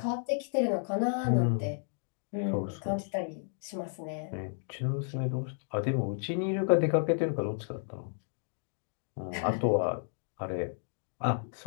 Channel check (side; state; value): right; silent; digital silence